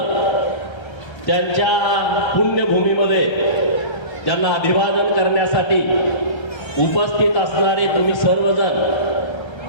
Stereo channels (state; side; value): late; right; 1.3 ms